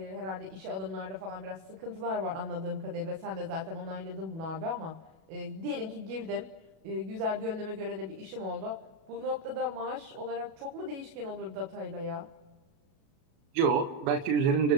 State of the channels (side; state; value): left; late; 37 ms